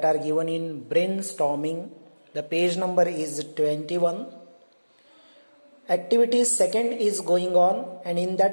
are given in brainstorming. The page number is 21. Activity second is going on, and in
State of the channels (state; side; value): inverted; both; correlation -1.00